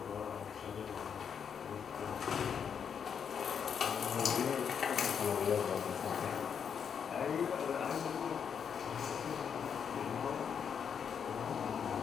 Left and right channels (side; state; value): right; quieter; 7.3 dB